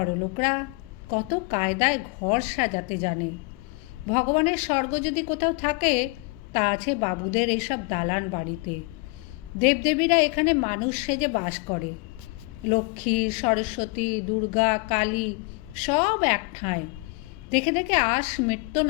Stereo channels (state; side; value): quieter; right; 27.6 dB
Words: লোকরা কত কায়দায় ঘর সাজাতে জানে। ভগবানের স্বর্গ যদি কোথাও থাকে তা আছে বাবুদের এইসব দালান বাড়িতে। দেবদেবীরা এখানে মানুষ সেজে বাস করে। লক্ষ্মী, সরস্বতী, দুর্গা, কালী সব এক ঠাঁই। দেখে দেখে আশ মিটত